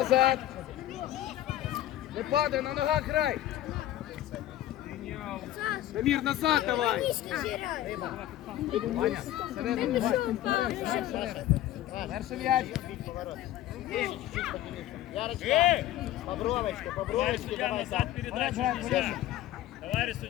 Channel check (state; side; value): quieter; right; 13.4 dB